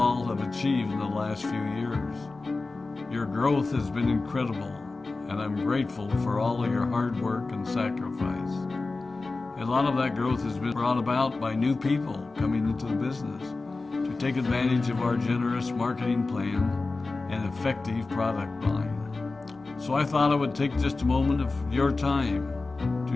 have achieved in the last few years. Your growth has been incredible, and I'm grateful for all of your hard work and sacrifice. A lot of that growth has been brought about by new people coming into the business to take advantage of our generous marketing plan and effective product line. So I thought I would take just a moment of your time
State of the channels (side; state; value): right; quieter; 3.6 dB